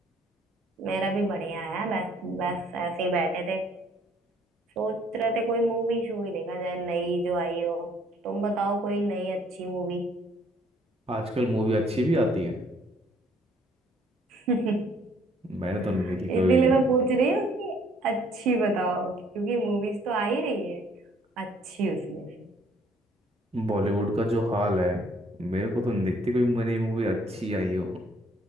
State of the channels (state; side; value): normal; both; correlation 0.62